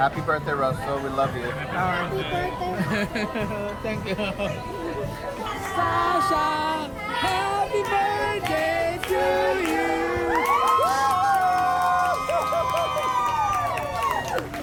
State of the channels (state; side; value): identical; both; correlation 1.00